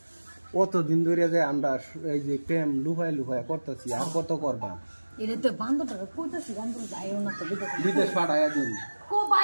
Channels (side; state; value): both; inverted; correlation -1.00